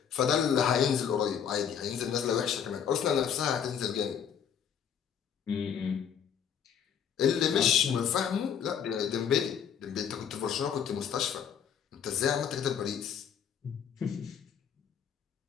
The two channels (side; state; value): right; quieter; 8.1 dB